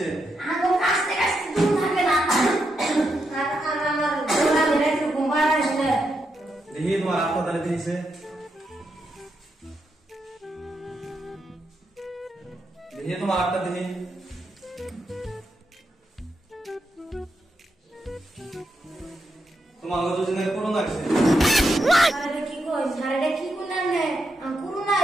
আগো কাছে কাছে দূর থাকে না। আর আমার গোলা মেরে একটু ঘুমা আসলে। দেখি তোমার হাতটা তাহলে কি হইছে? দেখি তোমার হাতটা দেখি। তোমার আগে দুজনে করোনা হইছে। আরে কি কইছ? আরে কি কোনা নে? করোনা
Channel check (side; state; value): both; normal; correlation 0.83